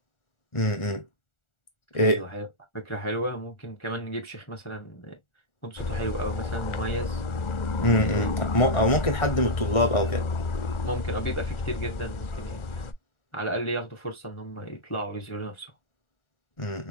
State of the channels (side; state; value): right; late; 1.4 ms